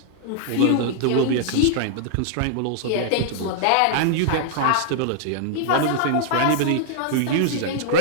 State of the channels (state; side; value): different; both; correlation -0.01